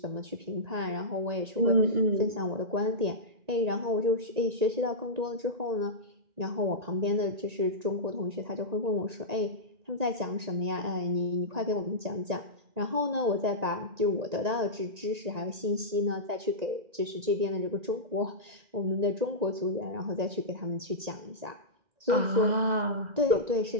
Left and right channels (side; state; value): left; late; 1.9 ms